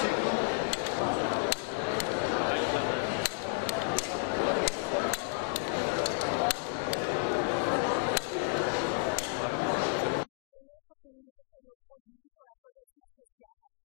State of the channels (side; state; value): right; silent; digital silence